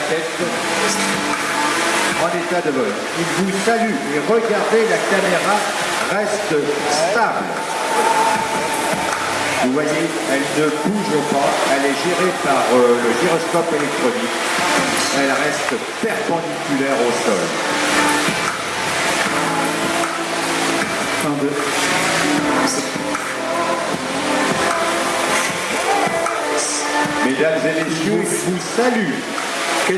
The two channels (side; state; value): both; identical; correlation 1.00